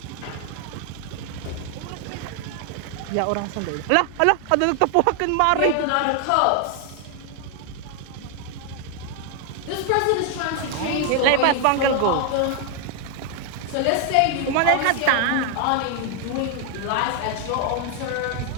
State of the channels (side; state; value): both; different; correlation 0.00